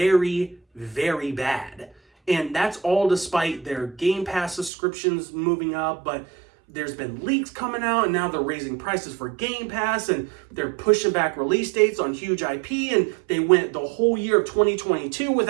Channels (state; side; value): drops out; left; at 4.7 s